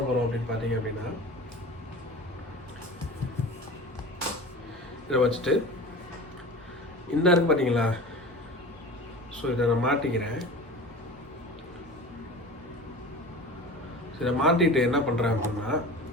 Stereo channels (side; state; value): both; normal; correlation 0.35